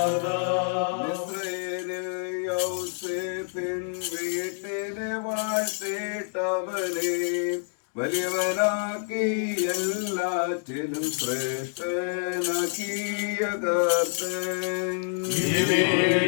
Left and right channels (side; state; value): right; silent; digital silence